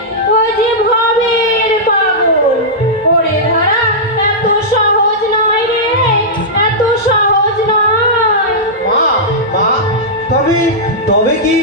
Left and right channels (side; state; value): both; normal; correlation -0.11